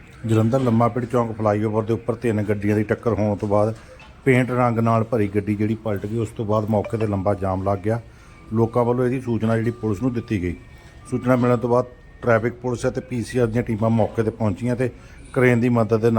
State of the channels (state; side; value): identical; both; correlation 1.00